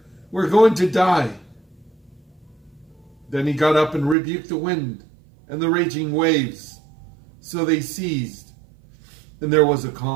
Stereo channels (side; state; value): left; drops out; at 4.2 s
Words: we're going to die." Then he got up and rebuked the wind and the raging waves. So they ceased, and there was a